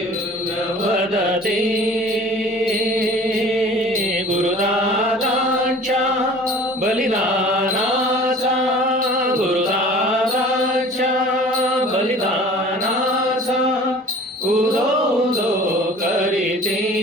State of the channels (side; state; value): both; normal; correlation 0.46